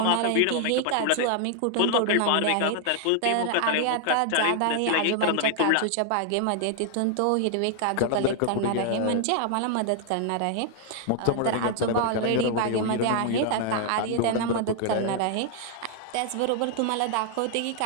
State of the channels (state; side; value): different; both; correlation 0.00